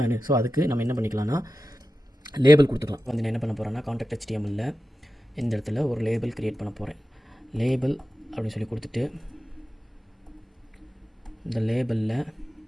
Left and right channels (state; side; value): normal; both; correlation 0.93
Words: ஸோ அதுக்கு நம்ம என்ன பண்ணிக்கலாம்னா லேபிள் கொடுத்துக்கலாம். வந்து நான் என்ன பண்ண போகிறேன்னா காண்டாக்ட் HTML இந்த இடத்துல ஒரு லேபிள் க்ரியேட் பண்ண போகிறேன். லேபிள் அப்படின்னு சொல்லி கொடுத்துட்டு இந்த லேபிளில்